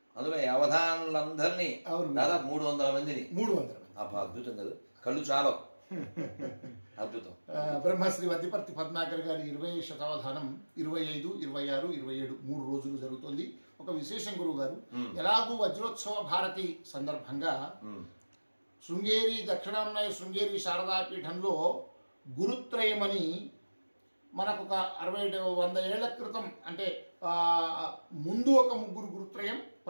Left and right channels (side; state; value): both; inverted; correlation -1.00